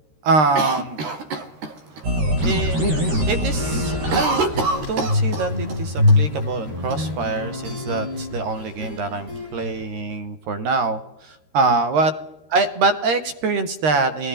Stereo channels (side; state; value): left; late; 13 ms